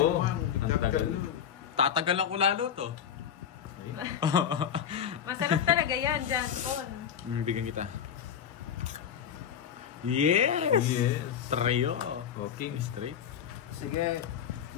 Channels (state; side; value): quieter; right; 8.6 dB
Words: Ang tagal. Tatagalan ko lalo to. Masarap talaga yan, John Paul. Bigyan kita. Yes! Yes. Trio. Okay. Straight. Sige.